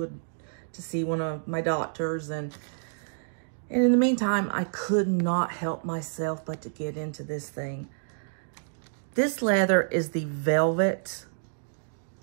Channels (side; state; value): left; silent; digital silence